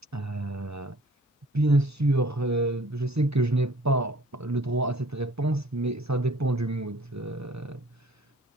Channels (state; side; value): normal; both; correlation 0.53